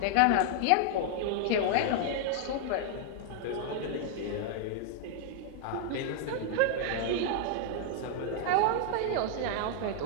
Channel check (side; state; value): both; different; correlation -0.01